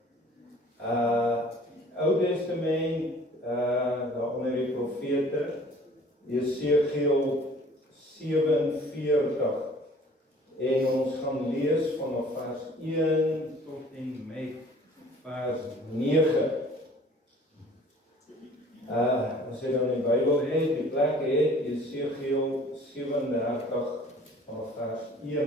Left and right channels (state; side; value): normal; both; correlation 0.51